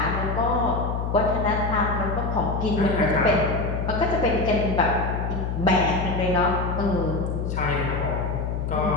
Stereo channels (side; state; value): left; noise; hum, 2 dB below the sound